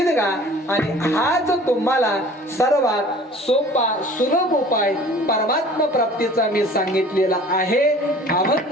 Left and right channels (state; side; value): normal; both; correlation 0.47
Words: गा. आणि हाच तुम्हाला सर्वात सोपा सुलभ उपाय परमात्मा प्राप्तीचा मी सांगितलेला आहे.